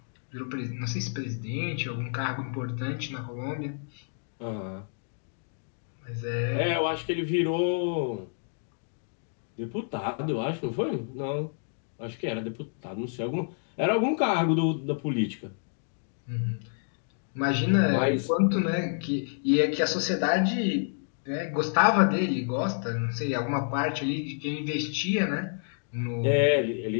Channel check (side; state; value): right; silent; digital silence